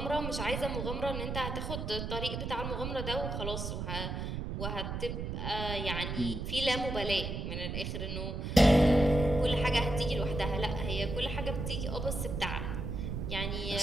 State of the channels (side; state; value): right; noise; rumble, 4 dB below the sound